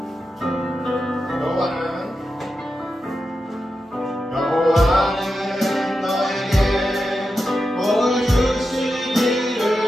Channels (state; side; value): normal; both; correlation 0.89